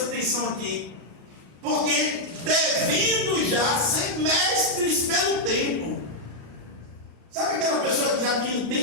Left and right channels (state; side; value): late; left; 35 ms